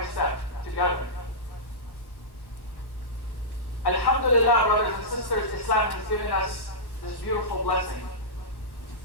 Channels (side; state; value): right; late; 1.1 ms